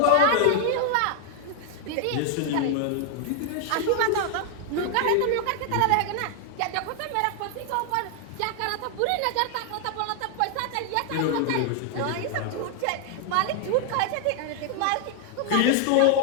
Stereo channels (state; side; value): different; both; correlation 0.00